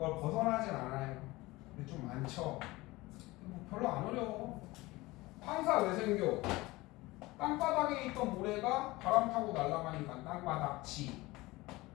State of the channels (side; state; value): right; quieter; 20.6 dB